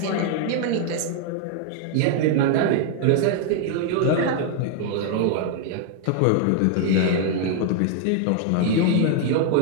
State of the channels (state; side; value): different; both; correlation 0.00